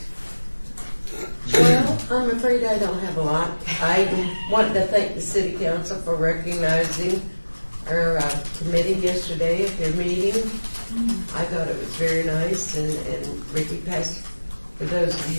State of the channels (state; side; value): inverted; both; correlation -1.00